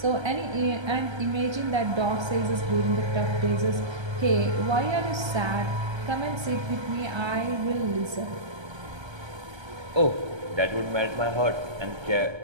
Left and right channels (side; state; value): left; late; 1.3 ms